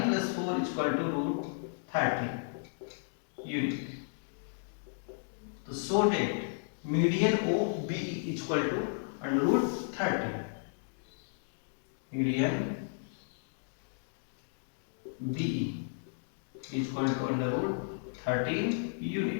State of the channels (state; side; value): silent; right; digital silence